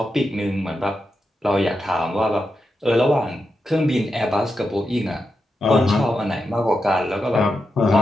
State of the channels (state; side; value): normal; both; correlation 0.87